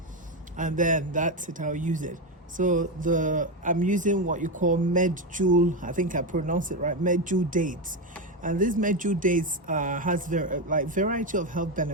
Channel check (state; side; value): normal; both; correlation 0.11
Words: and then that's it. I'll use it. So I'm using what you call medjool. I think I pronounced it right. Medjool dates, and this medjool dates has variety of health